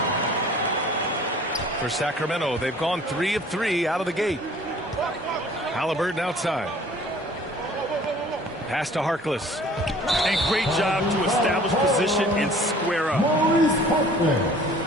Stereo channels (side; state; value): both; normal; correlation 0.51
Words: For Sacramento, they've gone 3 of 3 out of the gate. Halliburton outside. Pass to Harkless. And great job to establish position and square up. Maurice Harkless.